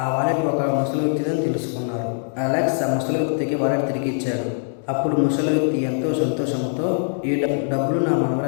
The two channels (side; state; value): right; silent; 64 dB below the other